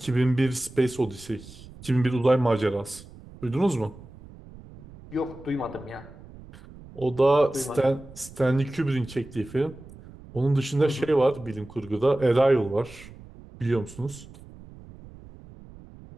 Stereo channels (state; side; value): noise; right; rumble, 19 dB below the sound